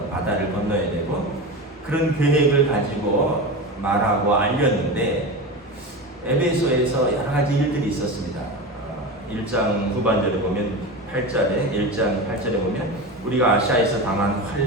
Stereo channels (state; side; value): normal; both; correlation 0.25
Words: 바다를 건너야 되고, 그런 계획을 가지고 말하고 알렸는데, 에베소에서 여러 가지 일들이 있었습니다. 1장 후반절에 보면 8절에 1장 8절에 보면 우리가 아시아에서 당한